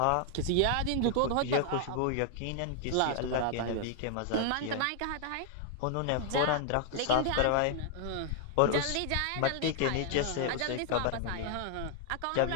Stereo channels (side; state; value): both; different; correlation 0.00